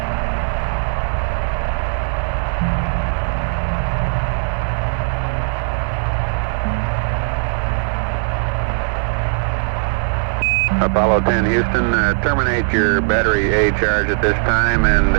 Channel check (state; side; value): silent; left; digital silence